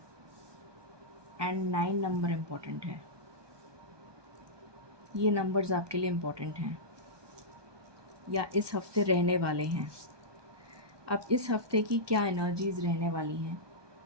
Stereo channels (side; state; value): left; late; 1.2 ms